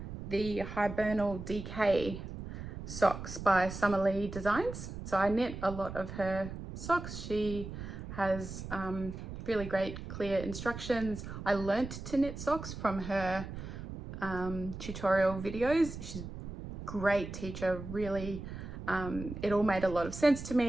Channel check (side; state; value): right; noise; rumble, 9 dB below the sound